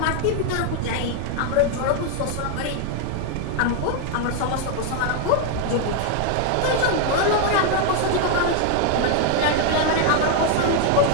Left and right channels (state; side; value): different; both; correlation 0.00